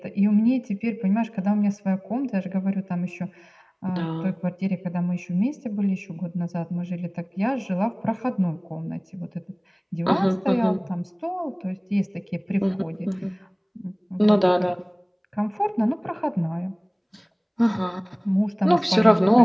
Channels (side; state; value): both; identical; correlation 1.00